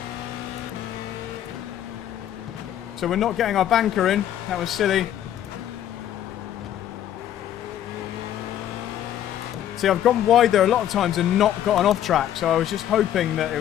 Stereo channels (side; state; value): right; quieter; 11.2 dB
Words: So we're not getting our banker in. That was silly. See, I've gone wide there a lot of times and not got an off track, so I was just hoping that it